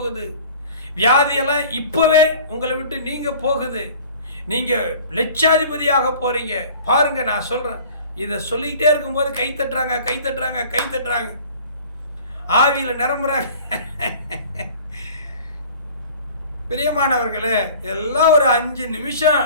வியாதியெல்லாம் இப்போவே உங்களை விட்டு நீங்க போகுது. நீங்கள் லட்சாதிபதியாக போகிறீங்க. பாருங்க, நான் சொல்கிறேன், இதை சொல்லிக்கிட்டே இருக்கும்போது கை தட்டுறாங்க, கை தட்டுறாங்க, கை தட்டுறாங்க, ஆவியில் நிரம்புறாங்க. பிரியமானவர்களே, எல்லாம் ஒரு 5 நிமிஷம்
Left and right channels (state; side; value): inverted; both; correlation -0.45